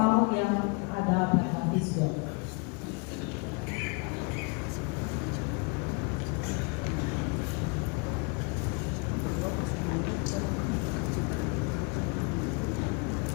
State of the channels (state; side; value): quieter; right; 33.0 dB